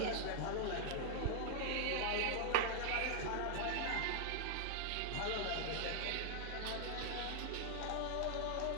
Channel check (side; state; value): both; different; correlation 0.00